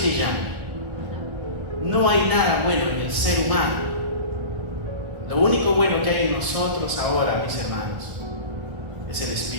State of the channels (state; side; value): late; left; 1.7 ms